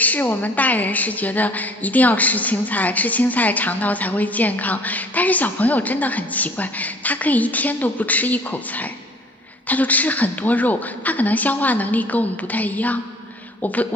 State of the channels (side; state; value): both; normal; correlation 0.53